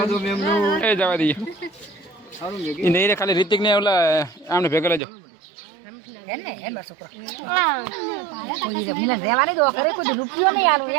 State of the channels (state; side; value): drops out; left; at 5.0 s